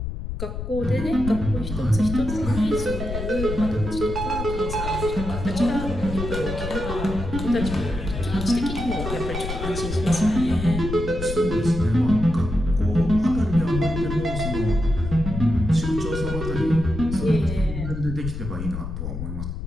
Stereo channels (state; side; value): noise; left; rumble, 6 dB below the sound